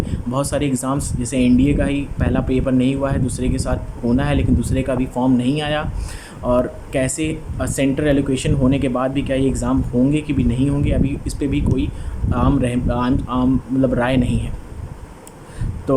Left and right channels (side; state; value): both; identical; correlation 1.00